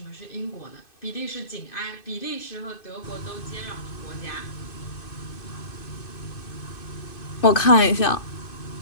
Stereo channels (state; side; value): late; right; 2.6 ms